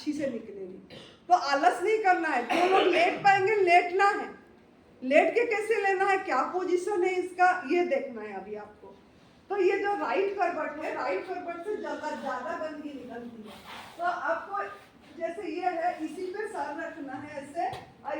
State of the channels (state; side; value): identical; both; correlation 1.00